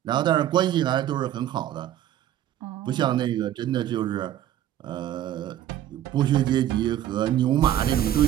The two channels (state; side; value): quieter; left; 11.9 dB